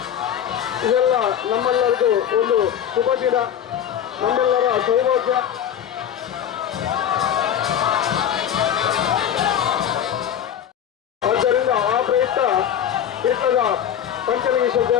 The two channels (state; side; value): quieter; right; 9.5 dB